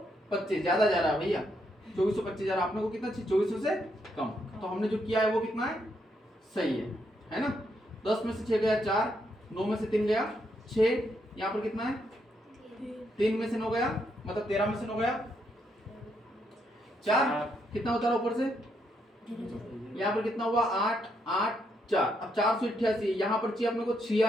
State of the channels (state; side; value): normal; both; correlation 0.77